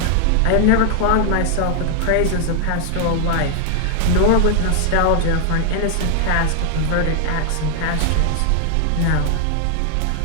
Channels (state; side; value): different; both; correlation 0.00